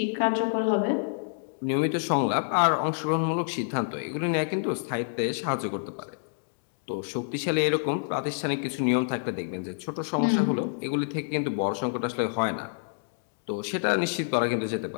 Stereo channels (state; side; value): silent; right; digital silence